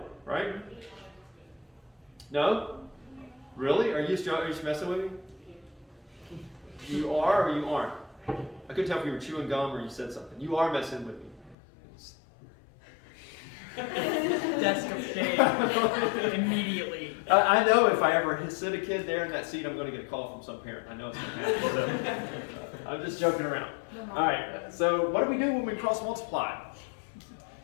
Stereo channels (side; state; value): right; drops out; at 11.6 s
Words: right? No? Really? Are you just messing with me? You are or you aren't? I couldn't tell if you were chewing gum or you said something. You are messing with me. Desk of shame. Immediately. I know if I ever sit a kid there in that seat, I'm going to get a call from some parent. I know it's going to happen. So I'm just joking around. All right. So what do we do when we cross multiply?